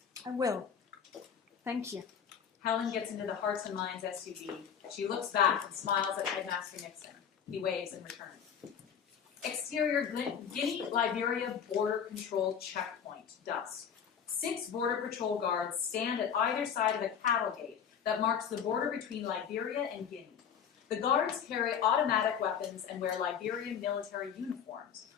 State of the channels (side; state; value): right; quieter; 7.8 dB